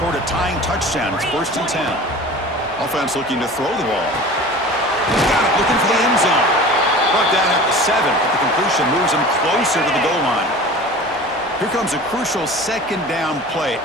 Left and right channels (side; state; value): both; normal; correlation 0.39